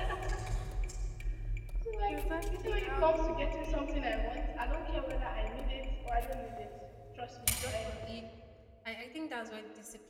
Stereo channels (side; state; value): both; identical; correlation 1.00